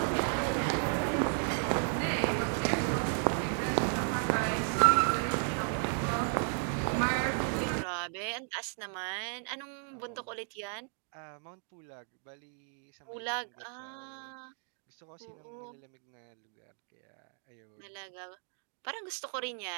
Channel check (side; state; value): left; silent; 55 dB below the other